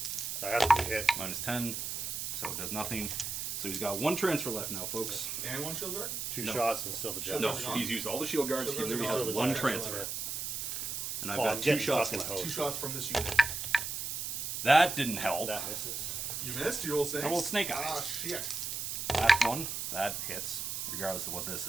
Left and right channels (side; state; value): right; noise; hiss, 3 dB below the sound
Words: I have to be hit. Minus 10. So it does nothing. So he's got 1 transfer left now, folks. And 1 shield guard? 2 No. shots and still the Shield jack. No, guard's gone. he's used all the shield guards. Shield He guards are literally gone. has The 1 jack transfer. left. And I've Oh, I'm got 2 getting shots fucking left. hosed. 2 shots from this unit. That didn't help. That misses. You missed. You roll snakes. I rolled snake eyes. Ah, shit. Last one, that hits, regardless of what this